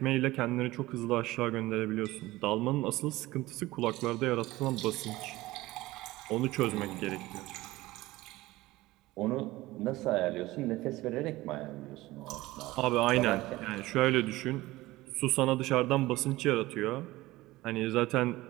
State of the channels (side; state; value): left; quieter; 18.5 dB